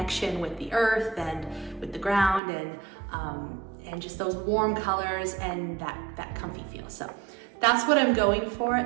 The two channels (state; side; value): drops out; left; at 2.4 s